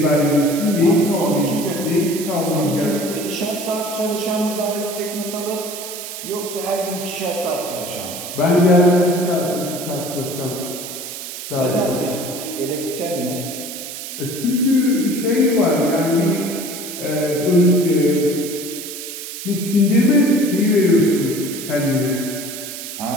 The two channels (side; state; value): right; noise; hiss, 9 dB below the sound